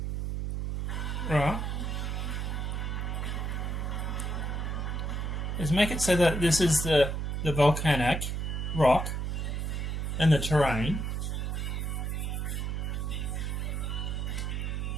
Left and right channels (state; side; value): noise; right; hum, 1 dB below the sound